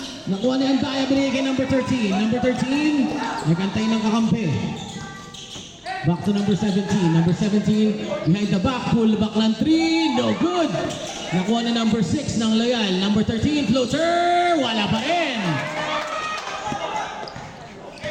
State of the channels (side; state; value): both; identical; correlation 1.00